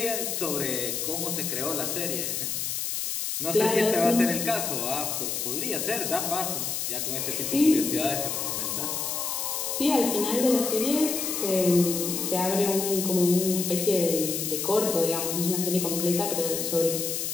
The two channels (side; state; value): left; noise; hiss, 2 dB below the sound